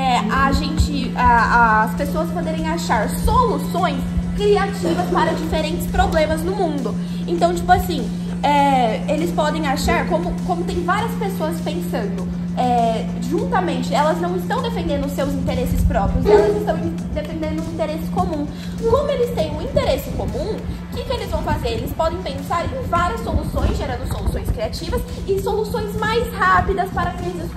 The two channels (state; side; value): identical; both; correlation 1.00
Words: as pessoas poderem achar soluções criativas para diferentes problemas no mundo. Então, tipo assim, eles podem achar, como tem várias pessoas pensando, juntamente, elas não estão defendendo os seus interesses próprios, elas estão defendendo um interesse comum. Como eles têm um interesse comum, o que eles vão fazer? Eles podem pensar em várias soluções, gerando soluções criativas e soluções mais rápidas para crises